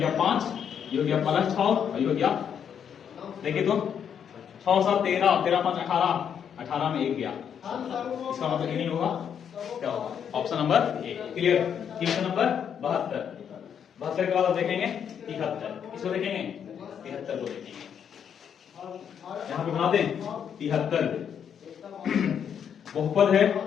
5, ये हो गया प्लस 6 और ये हो गया, देखिए तो 6 7 13 13 5 18 में 1 गया, इसका मतलब ये नहीं होगा, क्या होगा option number A. Clear? Question number 72 के बाद आप देखेंगे 73, इसको देखेंगे 73 को देखेंगे, यहां पे बना दें 73 बहुपद है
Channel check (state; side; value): quieter; right; 8.1 dB